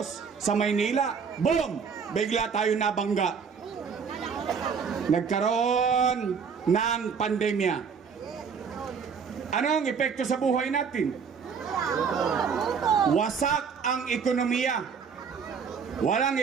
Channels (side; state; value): left; quieter; 6.2 dB